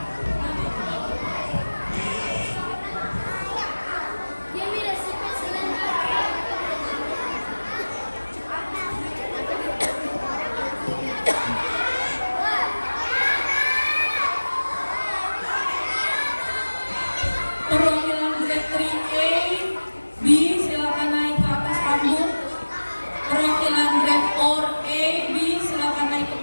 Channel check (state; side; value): inverted; both; correlation -1.00